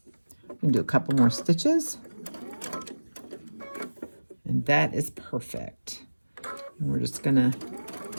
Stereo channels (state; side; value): inverted; both; correlation -1.00